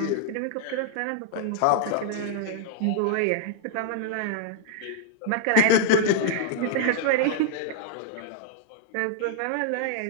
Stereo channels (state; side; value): different; both; correlation 0.00